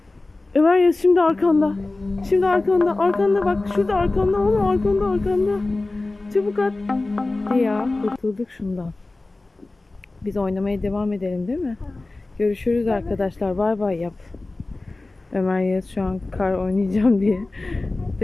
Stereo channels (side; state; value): right; quieter; 3.1 dB